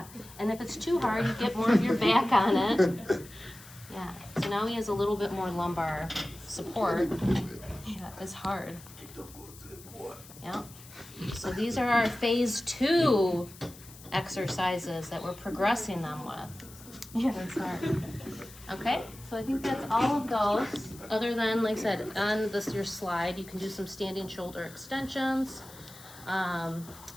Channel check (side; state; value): left; noise; hiss, 19 dB below the sound